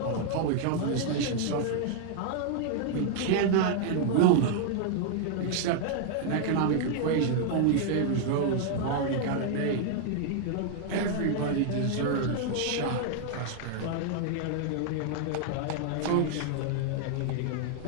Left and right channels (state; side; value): different; both; correlation 0.00